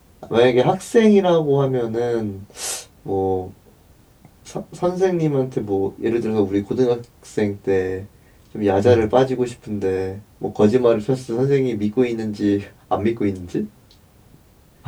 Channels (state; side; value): identical; both; correlation 1.00